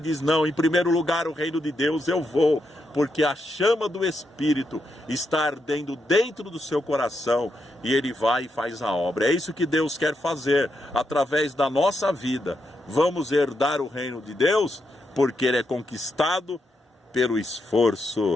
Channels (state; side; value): normal; both; correlation 0.82